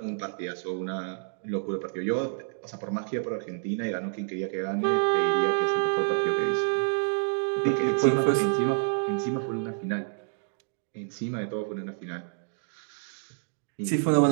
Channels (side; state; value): left; silent; digital silence